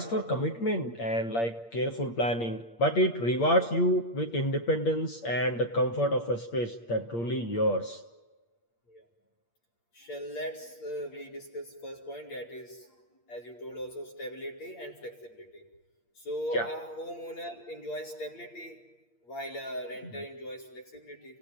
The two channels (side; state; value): right; late; 8.6 ms